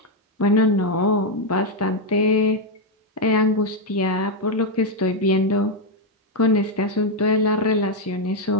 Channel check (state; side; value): normal; both; correlation 0.02